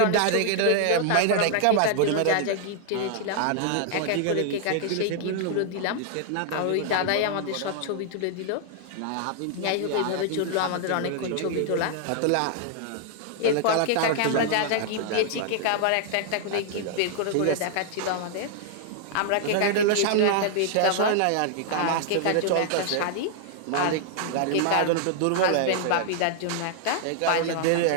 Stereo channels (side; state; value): both; different; correlation 0.00